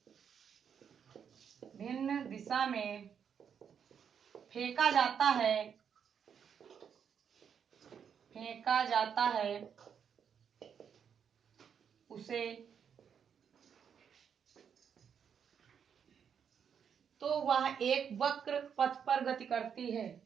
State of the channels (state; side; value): quieter; left; 7.6 dB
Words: में फेंका जाता है उसे तो वह एक वक्र पथ पर गति करती है।